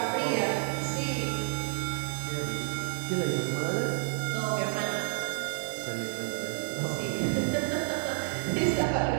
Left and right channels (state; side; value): silent; left; 58 dB below the other